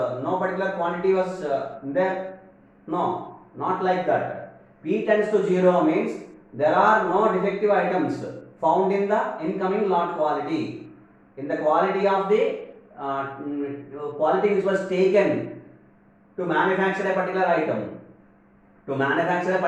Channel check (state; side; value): identical; both; correlation 1.00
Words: particular quantity was there. No, not like that. P tends to 0 means there are no defective items found in the incoming lot quality. In the quality of the quality which was taken to manufacture a particular item. To manufacture a